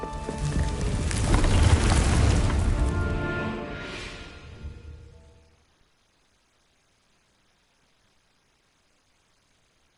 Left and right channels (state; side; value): identical; both; correlation 1.00